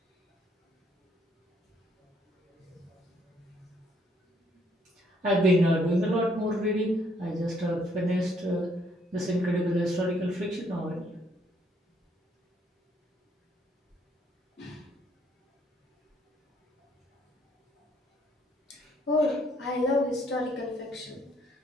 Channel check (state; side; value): normal; both; correlation 0.68